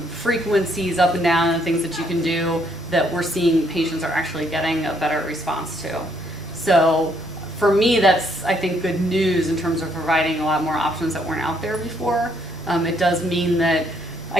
frequencies up and down and things that you can do that we're seeing patients are actually getting a better response to. So for me, that's, I think, good news in terms of providing a lot more options that weren't out there before. It does mean that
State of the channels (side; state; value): both; normal; correlation 0.70